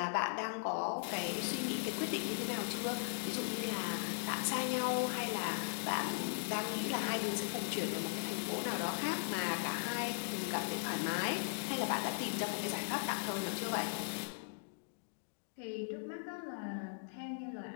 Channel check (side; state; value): right; silent; digital silence